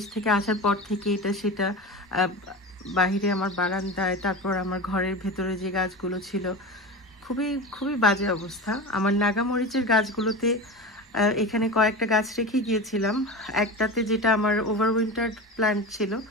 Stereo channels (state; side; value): normal; both; correlation 0.27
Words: থেকে আসার পর থেকে এটা সেটা বাহিরে আমার বারান্দায়, তারপর আমার ঘরের ভেতরে যে গাছগুলো ছিল খুবই খুবই বাজে অবস্থা। আমার নাগামরিচের গাছগুলোতে এখানে কয়েকটা গাছ রেখে গিয়েছিলাম। একটাতে যেটা আমার ওভারউইন্টার প্ল্যান্ট ছিল